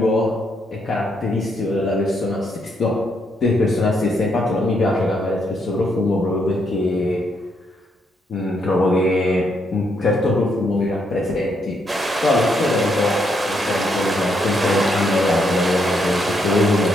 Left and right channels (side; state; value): both; normal; correlation 0.76